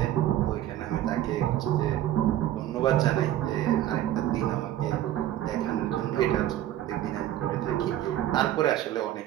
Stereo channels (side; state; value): left; quieter; 12.8 dB